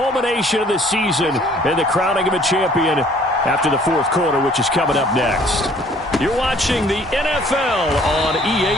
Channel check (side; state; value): both; normal; correlation 0.57